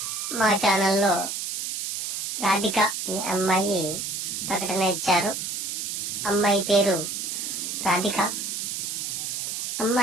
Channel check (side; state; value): right; noise; hiss, 4 dB below the sound